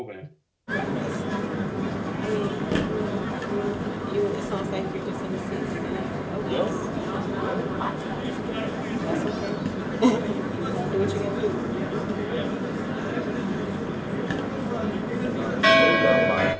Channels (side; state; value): both; identical; correlation 1.00